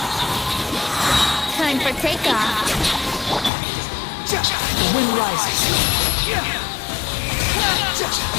Time for takeoff! The wind rises.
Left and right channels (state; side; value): drops out; right; at 3.5 s